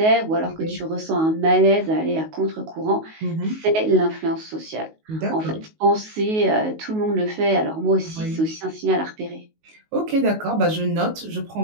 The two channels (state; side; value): late; left; 19 ms